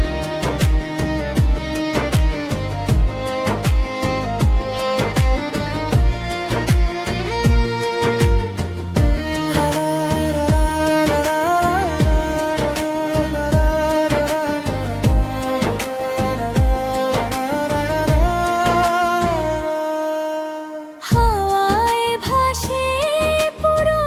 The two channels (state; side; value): identical; both; correlation 1.00